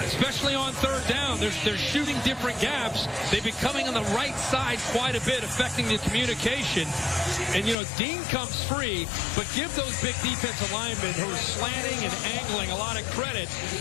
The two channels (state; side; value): drops out; right; at 7.8 s